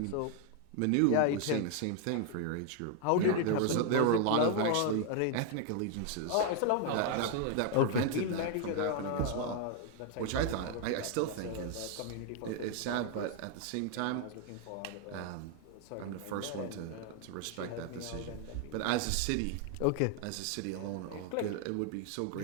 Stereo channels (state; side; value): different; both; correlation 0.00